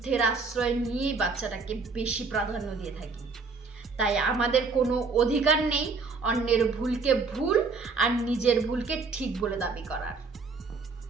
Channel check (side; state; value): left; quieter; 4.5 dB